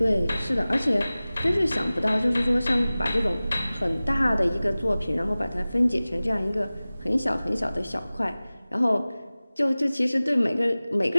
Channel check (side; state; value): both; inverted; correlation -0.98